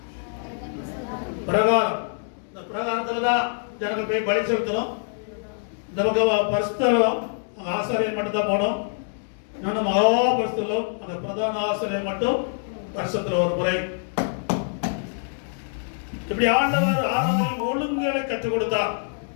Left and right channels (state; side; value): silent; right; digital silence